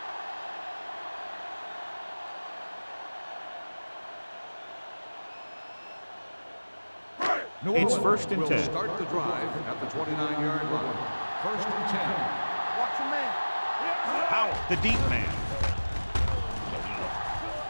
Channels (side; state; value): both; inverted; correlation -1.00